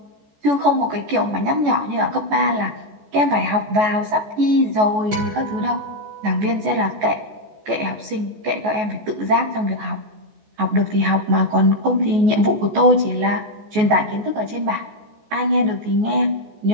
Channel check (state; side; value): late; left; 14 ms